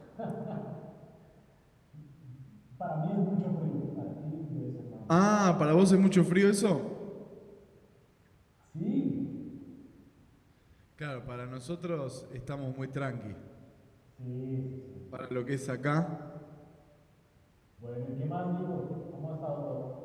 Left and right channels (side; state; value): both; identical; correlation 1.00